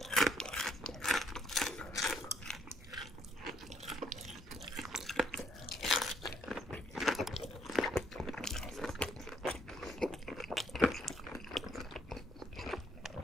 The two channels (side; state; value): both; normal; correlation 0.68